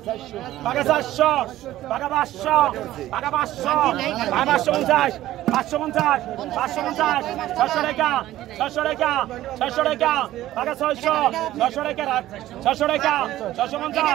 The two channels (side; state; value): left; quieter; 14.5 dB